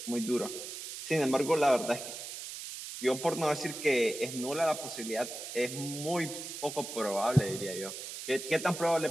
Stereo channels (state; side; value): noise; right; hiss, 9 dB below the sound